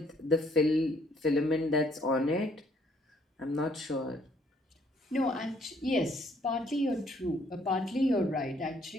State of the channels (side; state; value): both; normal; correlation 0.65